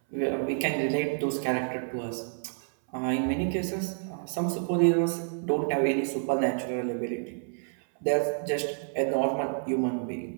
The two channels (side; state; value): left; silent; 59 dB below the other